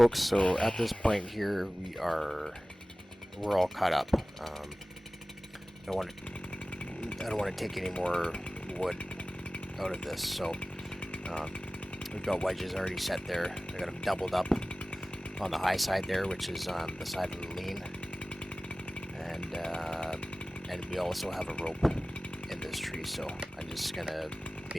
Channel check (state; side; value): normal; both; correlation 0.97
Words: so at this point here, we're all caught up. I don't want to take any more wood out of this, so we've got wedges already set there. I got them doubled up on the high side there, which is on the side of the lean, and we also have a rope in this tree. So I'm just gonna